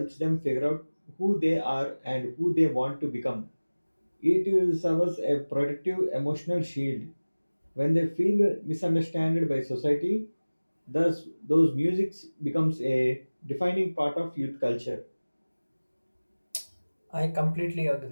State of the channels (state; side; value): inverted; both; correlation -1.00